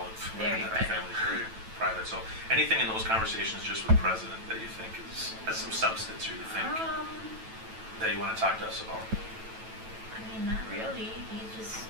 have Very the private. family's very private. So anything in those conversations just with President that you think has some substance, or you think that you want to talk to us about? I mean, not really. He just,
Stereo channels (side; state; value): left; late; 9.1 ms